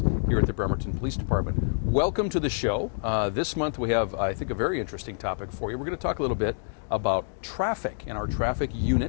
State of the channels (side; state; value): right; silent; digital silence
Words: here at the Bremerton Police Department. Welcome to the show. This month we have, I think, a very interesting topic for you. We're going to talk a little bit about traffic and our traffic